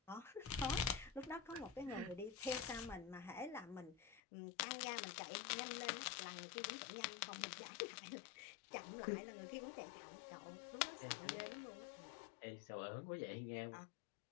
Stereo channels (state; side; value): drops out; right; at 4.2 s